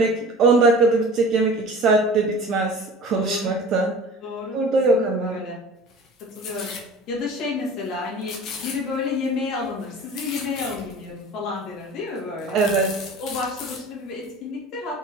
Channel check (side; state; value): both; normal; correlation 0.41